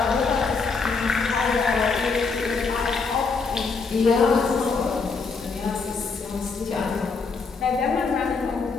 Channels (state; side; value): quieter; right; 4.6 dB